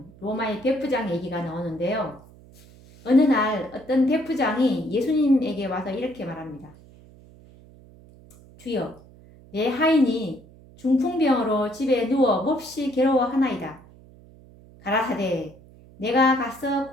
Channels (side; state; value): right; noise; hum, 23 dB below the sound